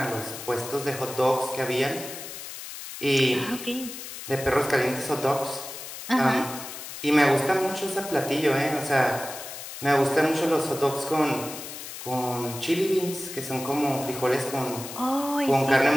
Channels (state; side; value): noise; left; hiss, 10 dB below the sound